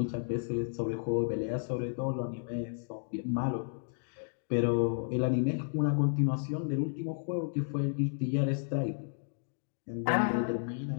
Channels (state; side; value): silent; right; digital silence